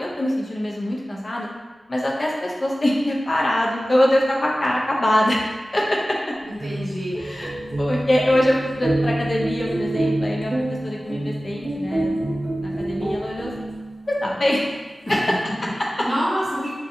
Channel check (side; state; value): both; normal; correlation 0.96